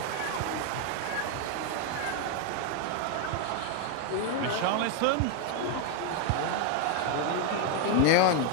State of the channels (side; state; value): both; different; correlation 0.01